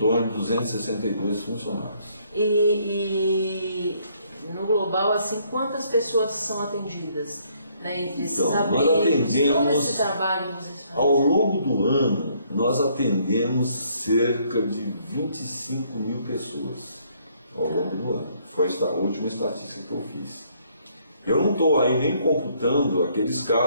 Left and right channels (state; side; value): inverted; both; correlation -0.67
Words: de 262 funcionários. E no global, assim, quantas pessoas são atendidas, né, entre esses então, abrigos, nós atendemos, todo esse trabalho que vocês fazem? Ao longo do ano, nós atendemos cerca de 25 mil pessoas ao longo do ano. Foi a última estatística que eu fiz. Eu não estou aí nem computando aqueles